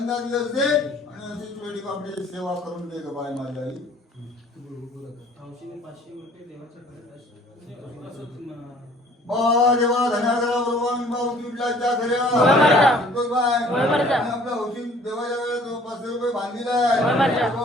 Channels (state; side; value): normal; both; correlation 0.54